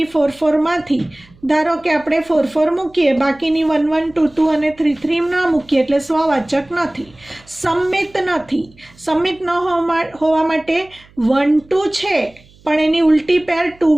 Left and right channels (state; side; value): noise; right; hum, 28 dB below the sound